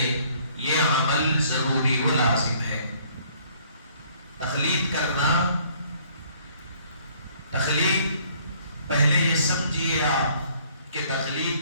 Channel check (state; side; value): inverted; both; correlation -0.60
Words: یہ عمل ضروری و لازم ہے۔ تقلید کرنا، تقلید پہلے یہ سمجھیے آپ کہ